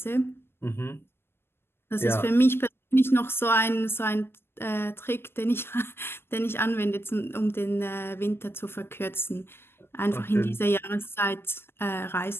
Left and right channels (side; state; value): right; late; 0.11 ms